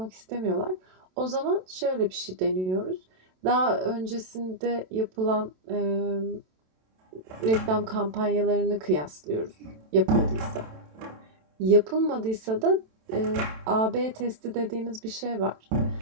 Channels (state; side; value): late; left; 27 ms